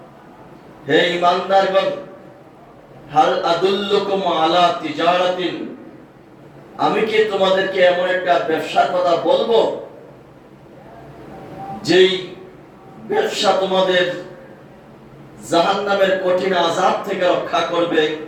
হে ঈমানদারগণ, হাল আদুল্লুকুম আলা তিজারাতিন, আমি কি তোমাদেরকে এমন একটা ব্যবসার কথা বলবো যেই ব্যবসা তোমাদের জাহান্নামের কঠিন আযাব থেকে রক্ষা করবে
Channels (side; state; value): both; identical; correlation 1.00